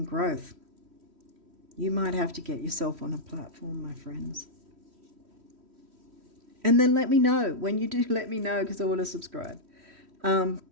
growth. You might have to get yourself on a platform, my friends. And then let me know. When you do, let me know, because I want to subscribe.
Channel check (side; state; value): left; late; 3.1 ms